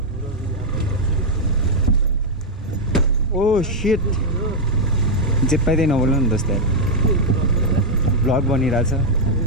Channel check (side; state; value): both; normal; correlation -0.02